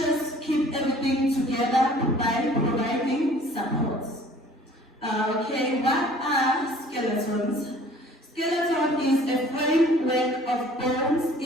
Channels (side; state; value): both; normal; correlation 0.52